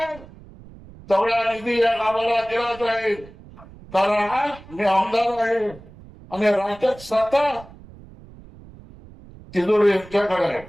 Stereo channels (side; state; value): right; noise; rumble, 20 dB below the sound